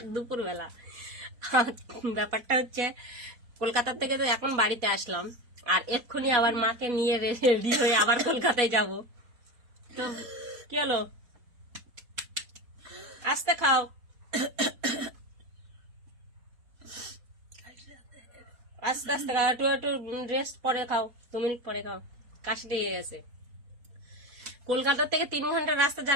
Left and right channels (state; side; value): late; left; 4.1 ms